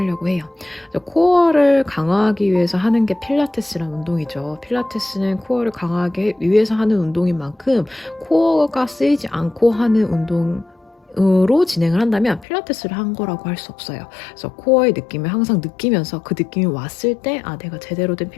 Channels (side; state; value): right; drops out; at 12.5 s